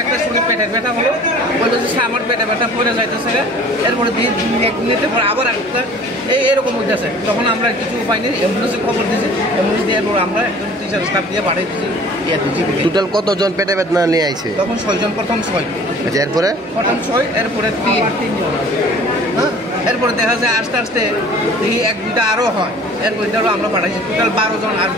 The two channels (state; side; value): normal; both; correlation 0.48